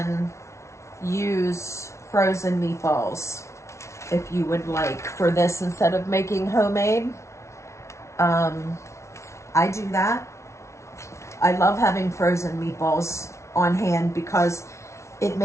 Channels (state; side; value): late; right; 0.13 ms